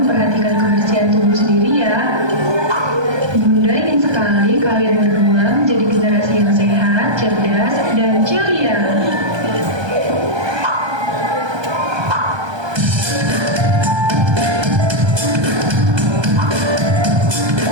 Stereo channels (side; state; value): left; late; 1.3 ms